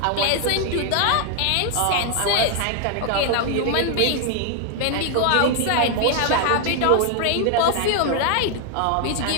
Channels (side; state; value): both; different; correlation 0.00